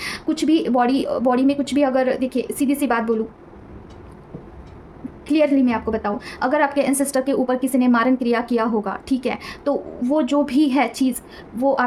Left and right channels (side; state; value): both; identical; correlation 1.00